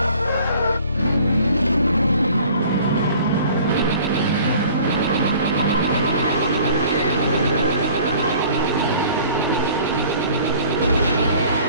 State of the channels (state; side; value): inverted; both; correlation -0.50